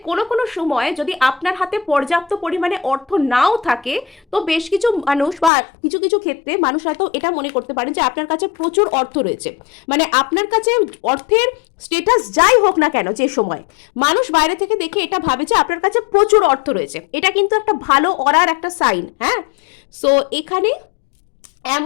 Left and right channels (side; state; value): right; drops out; at 5.5 s